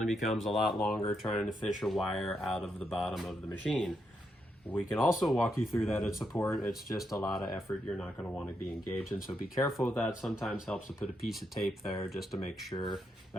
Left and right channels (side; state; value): both; normal; correlation 0.81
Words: becomes a lot longer trying to fish a wire out of the bottom of the machine. We can also walk you through that at support. It's just a lot of effort you're not going to want to be engaged in, so be careful with that. Sometimes helps to put a piece of tape there just to make sure